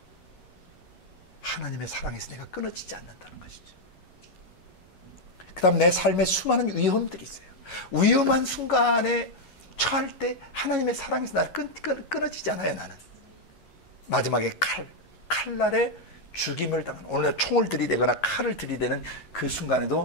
하나님의 사랑에서 내가 끊어지지 않는다는 것이죠. 그 다음 내 삶에 수많은 위험들이 있어요. 위험한 순간에 처할 때 하나님의 사랑에서 나를 끊어지지 않아요. 나는 마지막에 칼날에 죽임을 당하는, 오늘 총을 들이대거나 칼을 들이대는 그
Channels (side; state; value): right; late; 11 ms